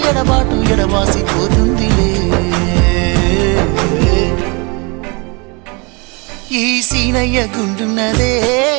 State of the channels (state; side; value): quieter; left; 30.2 dB